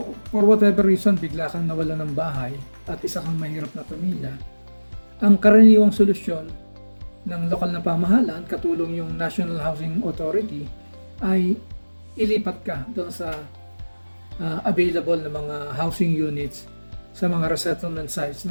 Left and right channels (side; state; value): both; inverted; correlation -1.00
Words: for whatever reason, bigla kang nawala ng bahay at isa kang mahirap na pamilya, Ang karaniwang solusyon ng lokal na pamahalaan, katulong yung National Housing Authority, ay ilipat ka doon sa available na mga housing units sa mga resettlement sites